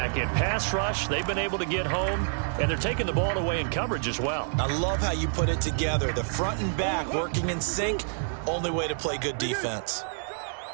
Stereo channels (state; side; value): silent; left; 59 dB below the other